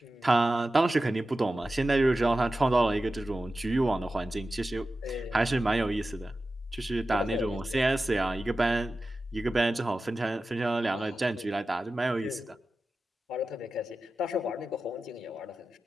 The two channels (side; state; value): both; normal; correlation 0.94